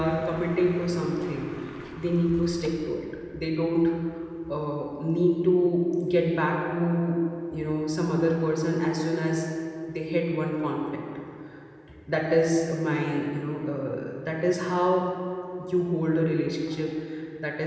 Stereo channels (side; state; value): both; identical; correlation 1.00